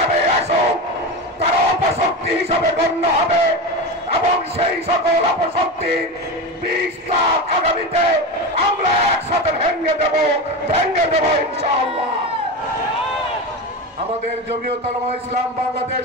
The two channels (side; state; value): both; normal; correlation 0.22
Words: আসুক তারা অপশক্তি হিসাবে গণ্য হবে এবং সেই সকল অপশক্তির বিষটা আগামীতে আমরা একসাথে ভেঙে দেব ইনশাআল্লাহ। আমাদের জমিয়তে উলামা ইসলাম বাংলাদেশ